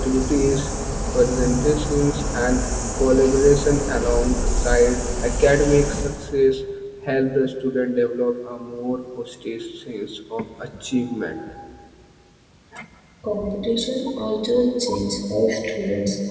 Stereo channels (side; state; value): both; identical; correlation 1.00